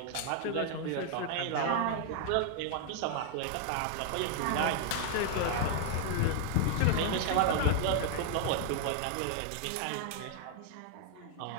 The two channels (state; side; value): different; both; correlation 0.00